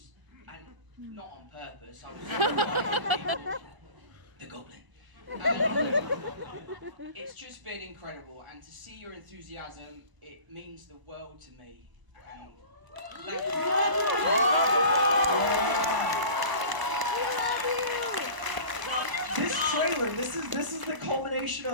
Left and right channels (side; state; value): left; late; 1.0 ms